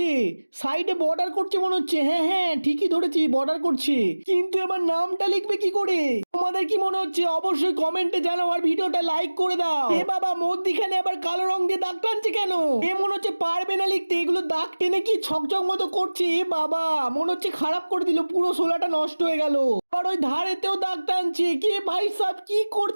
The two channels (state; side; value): inverted; both; correlation -1.00